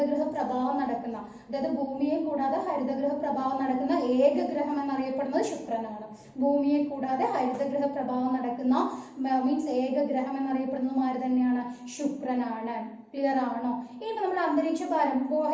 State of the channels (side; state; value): both; identical; correlation 1.00